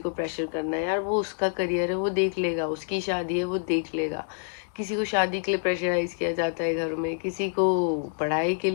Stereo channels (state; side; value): silent; right; digital silence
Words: प्रेशर करना है, यार वो उसका करियर है, वो देख लेगा, उसकी शादी है, वो देख लेगा। किसी को शादी के लिए प्रेशराइज किया जाता है घर में, किसी को पढ़ाई के